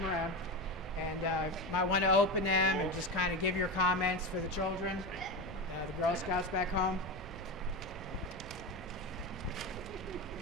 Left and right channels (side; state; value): both; normal; correlation 0.19